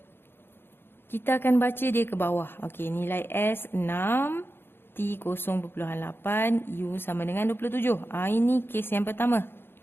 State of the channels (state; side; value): late; right; 0.11 ms